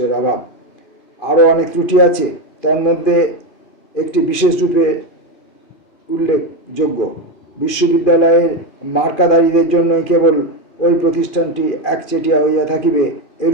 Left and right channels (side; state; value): right; late; 2.5 ms